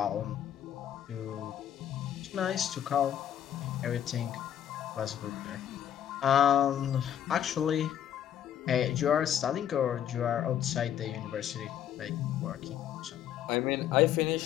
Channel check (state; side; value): quieter; right; 10.2 dB